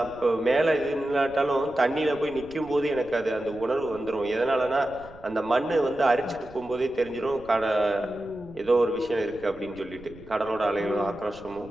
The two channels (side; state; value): right; noise; rumble, 21 dB below the sound